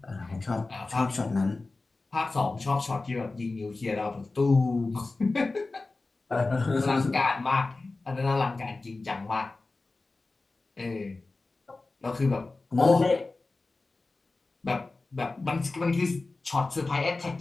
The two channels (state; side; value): quieter; right; 3.4 dB